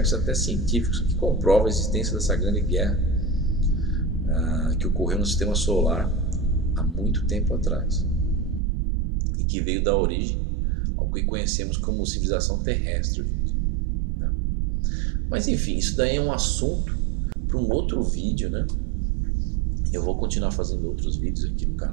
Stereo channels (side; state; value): left; drops out; at 8.6 s